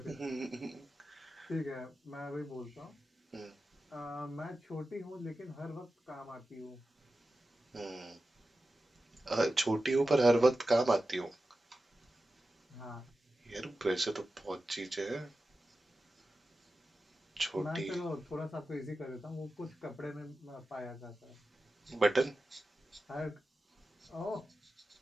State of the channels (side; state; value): both; normal; correlation 0.93